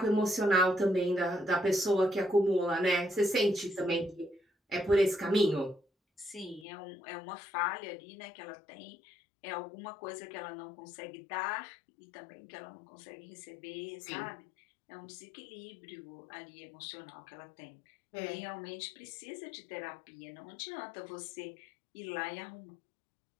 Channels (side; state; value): right; drops out; at 6.7 s